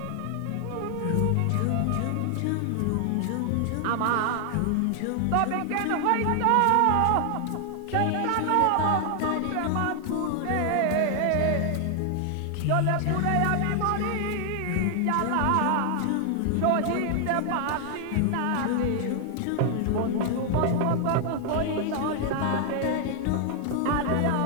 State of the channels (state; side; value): different; both; correlation 0.00